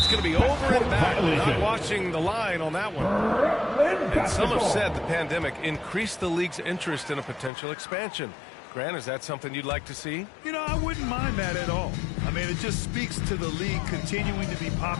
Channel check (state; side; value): drops out; right; at 7.5 s